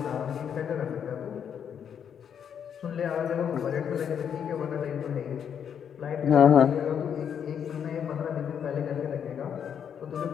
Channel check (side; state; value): right; quieter; 8.1 dB